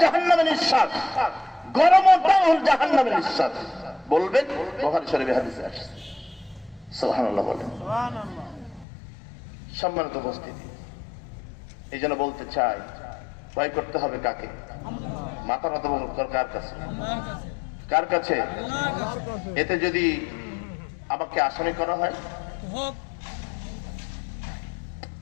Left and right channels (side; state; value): right; drops out; at 8.8 s